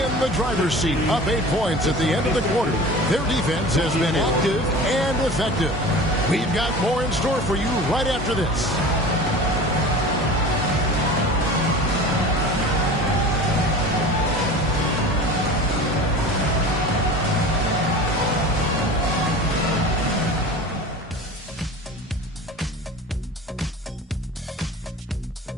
in the driver's seat, up 8 points at the end of the quarter. Their defense has been active and effective. We've got more in store for you right after this.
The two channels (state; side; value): normal; both; correlation 0.37